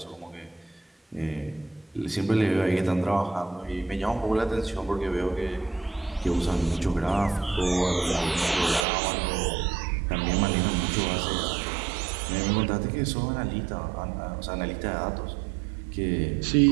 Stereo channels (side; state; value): left; drops out; at 8.8 s